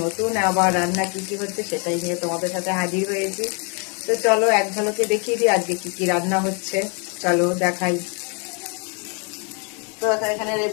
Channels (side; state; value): right; quieter; 36.1 dB